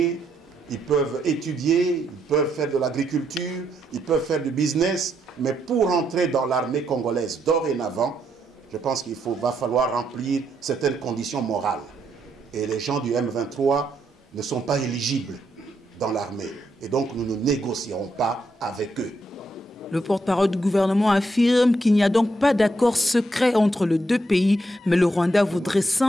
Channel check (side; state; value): both; normal; correlation 0.78